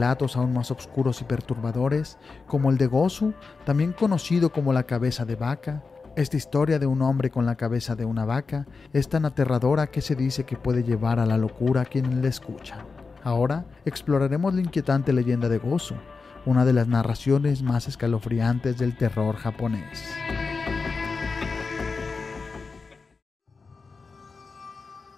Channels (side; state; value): right; quieter; 4.5 dB